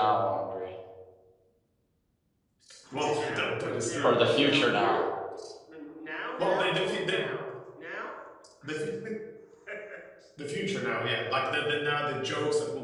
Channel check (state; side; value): identical; both; correlation 1.00